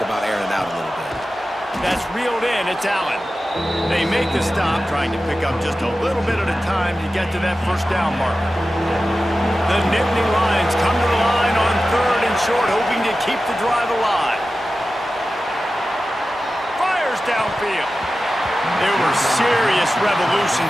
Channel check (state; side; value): normal; both; correlation 0.94